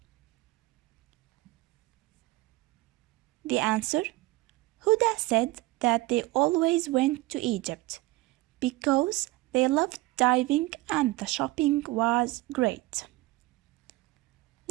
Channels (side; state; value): left; quieter; 20.2 dB